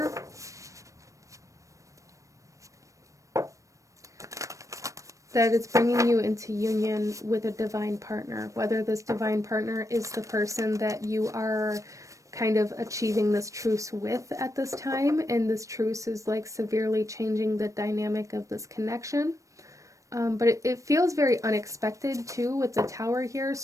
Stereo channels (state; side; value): late; left; 0.16 ms